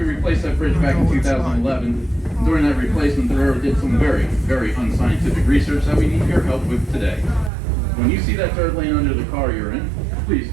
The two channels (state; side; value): drops out; left; at 7.5 s